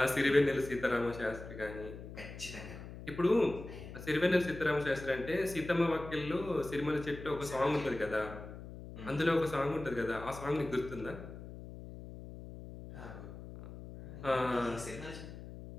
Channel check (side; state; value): left; noise; hum, 12 dB below the sound